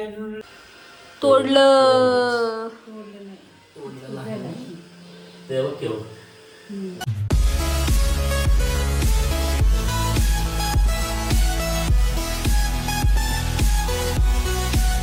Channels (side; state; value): both; identical; correlation 1.00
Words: तोडलं. तेव्हा केव्हा